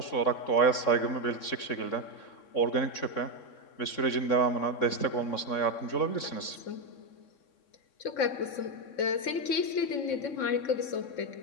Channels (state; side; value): late; right; 3.6 ms